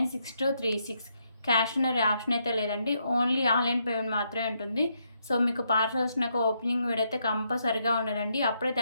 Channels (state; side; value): inverted; both; correlation -0.77